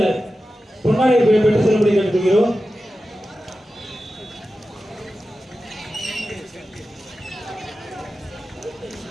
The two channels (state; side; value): normal; both; correlation 0.93